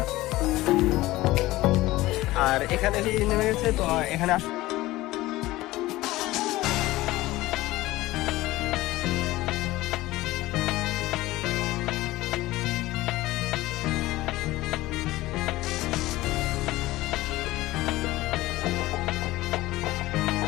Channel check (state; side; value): quieter; right; 17.9 dB